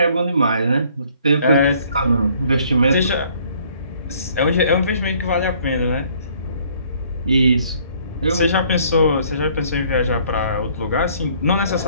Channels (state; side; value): inverted; both; correlation -0.60